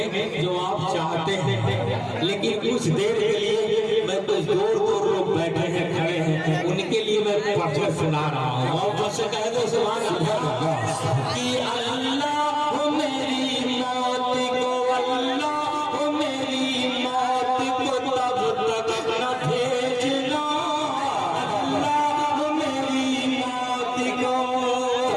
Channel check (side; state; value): both; identical; correlation 1.00